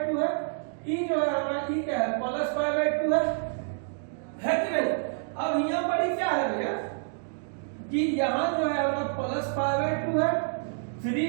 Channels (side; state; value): left; silent; digital silence